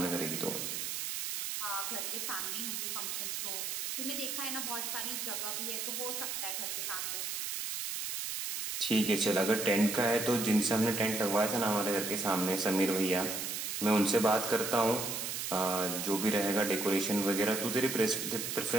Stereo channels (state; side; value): noise; right; hiss, 3 dB below the sound